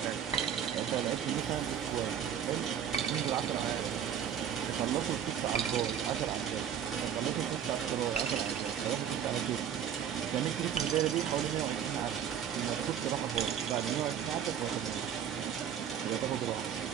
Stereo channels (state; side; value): quieter; left; 8.9 dB